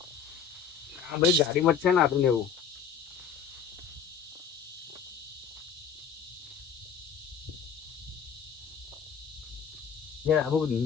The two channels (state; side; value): quieter; right; 6.9 dB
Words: આ બધી ગાડીમાં જ છે ને આદુ ને એવું